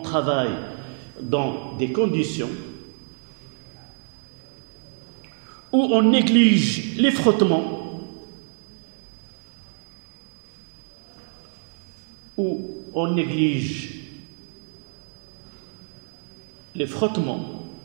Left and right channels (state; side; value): silent; left; 61 dB below the other